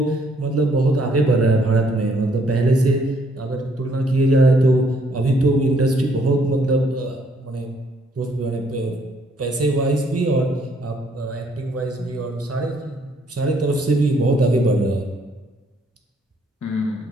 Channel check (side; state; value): both; normal; correlation 0.67